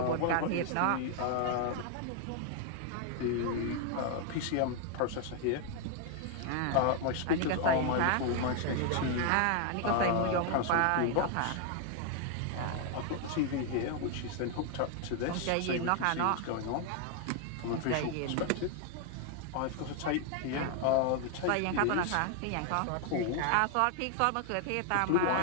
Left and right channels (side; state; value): both; different; correlation 0.00